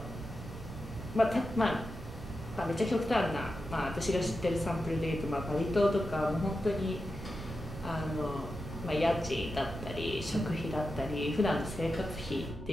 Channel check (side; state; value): right; noise; rumble, 12 dB below the sound